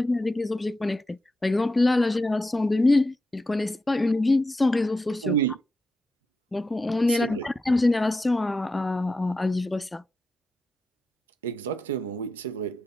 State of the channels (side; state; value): both; normal; correlation 0.88